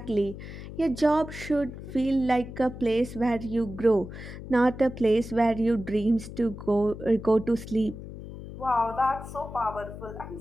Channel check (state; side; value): noise; left; hum, 12 dB below the sound